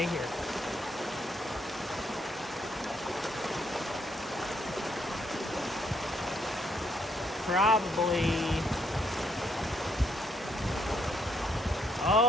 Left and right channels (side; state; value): both; normal; correlation 0.72